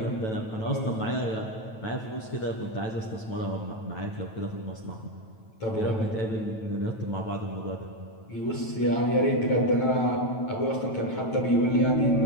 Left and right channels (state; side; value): late; right; 9.2 ms